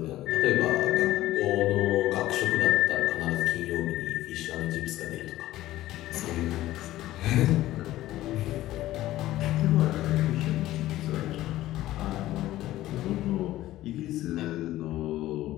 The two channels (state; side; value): quieter; right; 15.3 dB